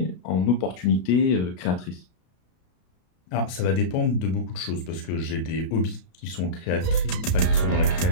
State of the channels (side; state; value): right; late; 33 ms